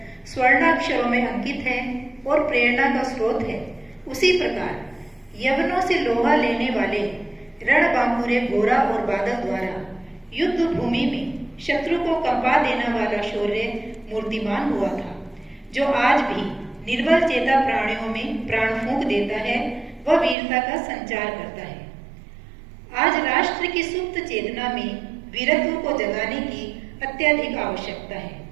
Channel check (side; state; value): left; drops out; at 20.4 s